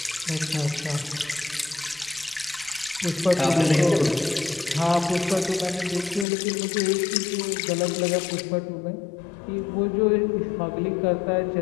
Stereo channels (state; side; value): drops out; right; at 6.2 s